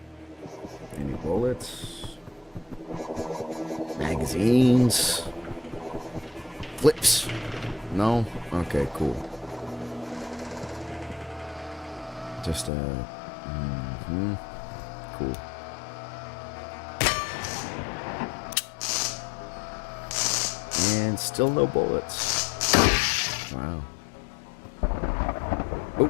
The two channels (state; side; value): drops out; right; at 12.7 s